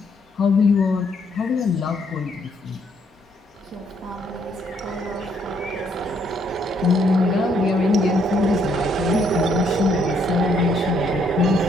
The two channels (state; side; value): normal; both; correlation 0.70